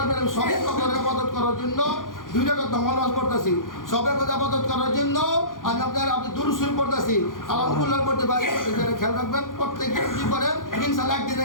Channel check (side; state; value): right; late; 0.90 ms